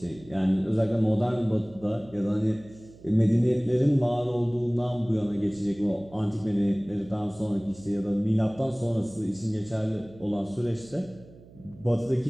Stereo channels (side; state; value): right; noise; hum, 22 dB below the sound